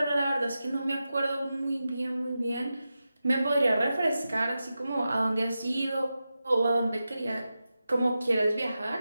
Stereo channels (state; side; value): inverted; both; correlation -0.91